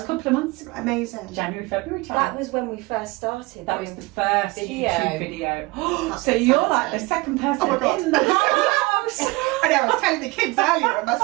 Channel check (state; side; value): quieter; left; 23.4 dB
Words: a couple of months. Amazing. January, February time. That was when we first started. That was the first Video. YouTube video. That's So you're like the second person Oh my God. in the house. I know, I was telling the kids earlier, and my